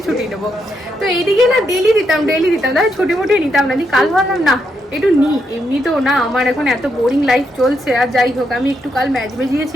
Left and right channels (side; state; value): both; normal; correlation 0.80